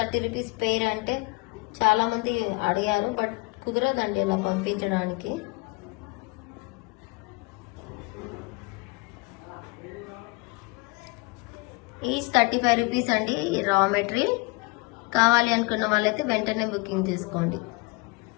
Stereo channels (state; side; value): quieter; right; 26.0 dB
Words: రూపీస్ పెయిర్ అంటే చాలా మంది అడిగారు, బట్ కుదరదండి ఇలా పంపించడానికి. ఈచ్ 35 రూపీస్ అండి రా మెటీరియల్. కావాలి అనుకున్న వాళ్ళైతే వెంటనే బుకింగ్ చేసుకోండి.